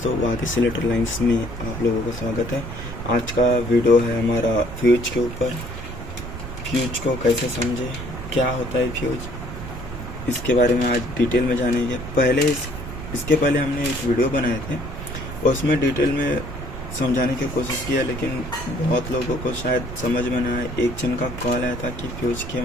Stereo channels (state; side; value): noise; right; rumble, 9 dB below the sound